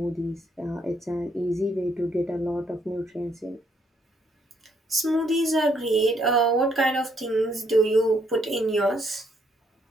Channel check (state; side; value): normal; both; correlation 0.71